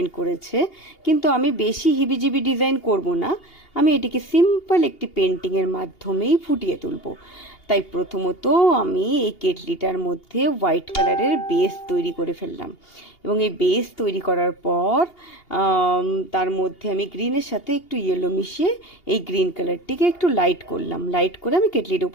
করেছে, কিন্তু আমি বেশি হিবিজিবি ডিজাইন করব না। আমি এটিকে সিম্পল একটি পেন্টিংয়ের মাধ্যমেই ফুটিয়ে তুলব। তাই প্রথমত আমি এই কেটলিটার মধ্যে হোয়াইট কালারের বেস তৈরি করে ফেললাম, এবং এই বেস তৈরি করার পর তার মধ্যে আমি গ্রিনের সাথে একটু ইয়েলো মিশিয়ে এই গ্রিন কালারটিকে একটু লাইট করলাম। লাইট করে আমি কেটলির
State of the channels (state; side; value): late; right; 2.8 ms